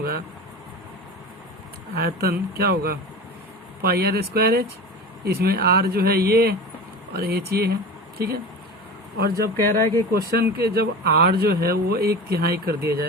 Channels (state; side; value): normal; both; correlation 0.31